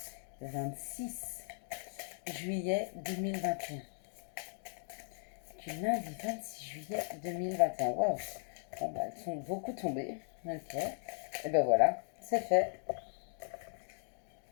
26 juillet 2021. Du lundi 26 juillet 2021. Waouh! Bon, bah, elles sont beaucoup tombées. Ok. Et ben voilà, c'est fait.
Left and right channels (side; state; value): right; silent; digital silence